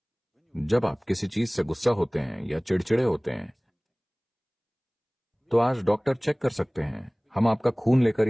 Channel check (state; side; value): identical; both; correlation 1.00